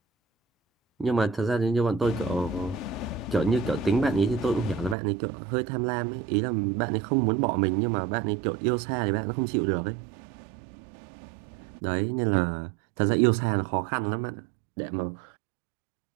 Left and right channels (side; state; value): left; drops out; at 5.0 s